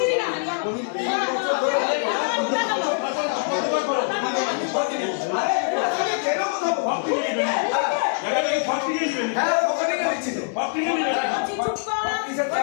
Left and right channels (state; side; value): silent; right; digital silence